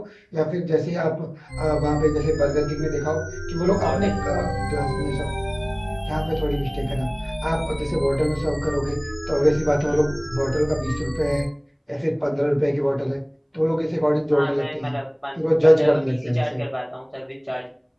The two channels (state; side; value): identical; both; correlation 1.00